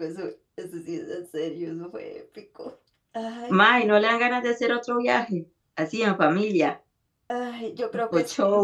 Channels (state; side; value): identical; both; correlation 1.00